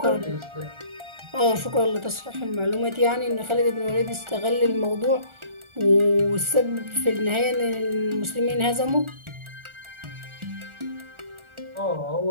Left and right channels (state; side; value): late; left; 1.4 ms